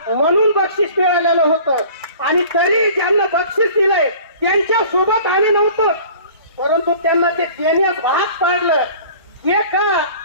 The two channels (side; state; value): both; inverted; correlation -0.46